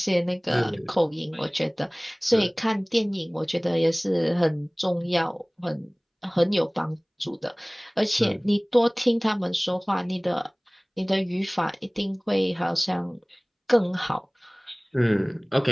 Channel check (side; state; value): both; identical; correlation 1.00